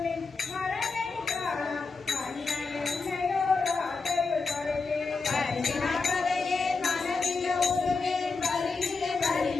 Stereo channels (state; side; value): quieter; right; 4.3 dB